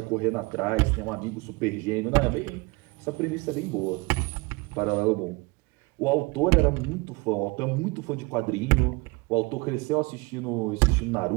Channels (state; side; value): quieter; left; 25.8 dB